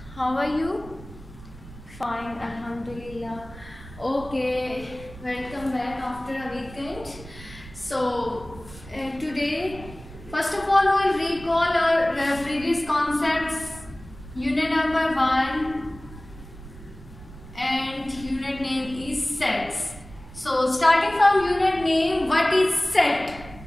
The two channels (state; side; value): noise; right; rumble, 17 dB below the sound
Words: How are you? Fine, alhamdulillah. Okay, welcome back after a weekend. So today, first of all, we will recall our previous concepts, unit number 1 and unit name is sets. So starting from unit name, what is set?